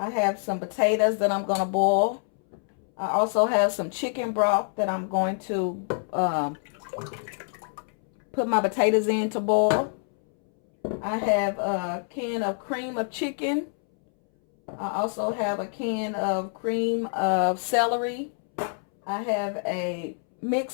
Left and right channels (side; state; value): right; silent; 61 dB below the other